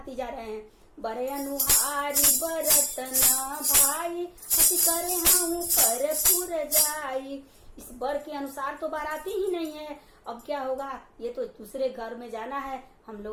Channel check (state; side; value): identical; both; correlation 1.00